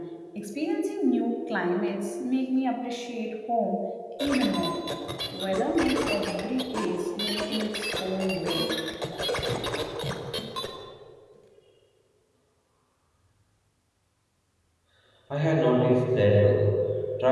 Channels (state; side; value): identical; both; correlation 1.00